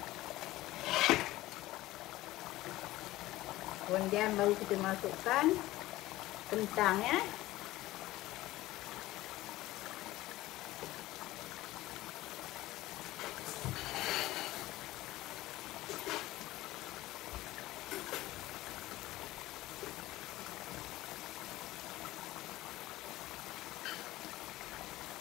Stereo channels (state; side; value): quieter; right; 17.1 dB